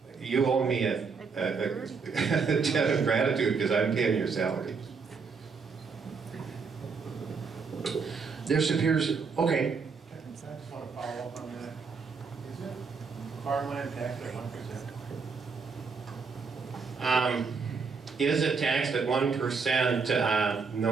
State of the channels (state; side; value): quieter; left; 5.2 dB